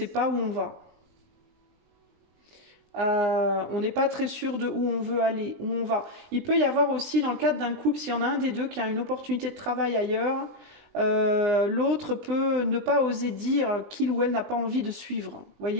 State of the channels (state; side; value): late; left; 19 ms